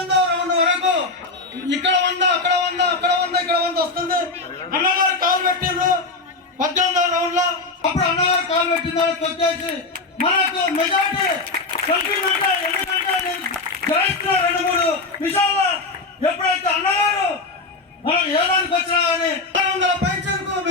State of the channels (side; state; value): right; quieter; 3.6 dB